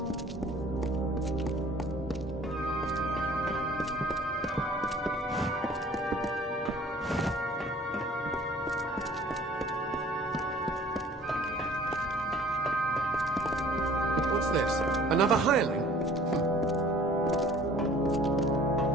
What's this? Another hireling?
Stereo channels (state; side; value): normal; both; correlation 0.51